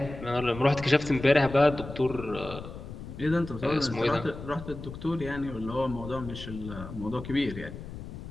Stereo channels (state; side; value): noise; left; rumble, 11 dB below the sound